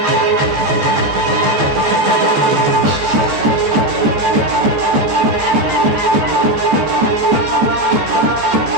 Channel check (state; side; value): late; left; 14 ms